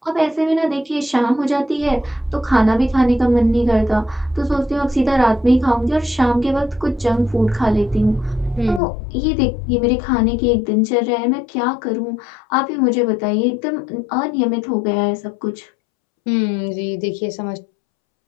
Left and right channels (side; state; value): right; drops out; at 8.8 s